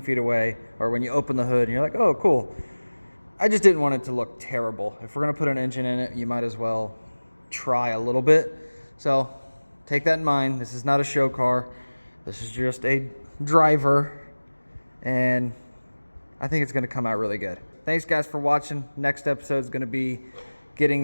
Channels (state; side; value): inverted; both; correlation -1.00